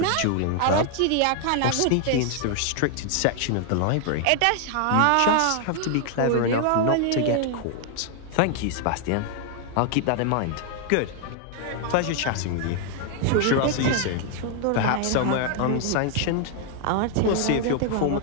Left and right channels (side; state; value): both; different; correlation 0.00